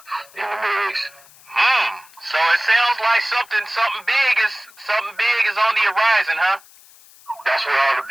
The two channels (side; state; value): left; noise; hiss, 25 dB below the sound